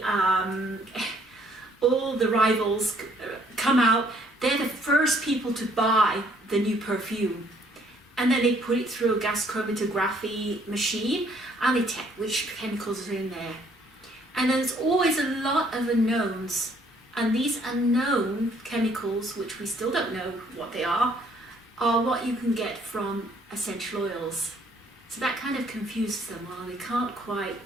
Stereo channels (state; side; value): normal; both; correlation 0.64